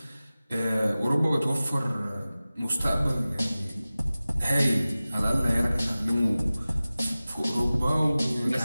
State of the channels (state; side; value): inverted; both; correlation -0.97